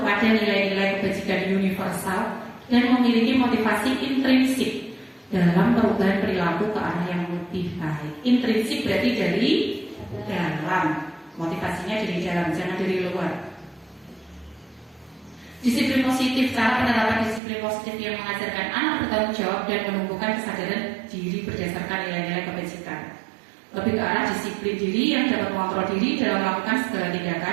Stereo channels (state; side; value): drops out; left; at 17.4 s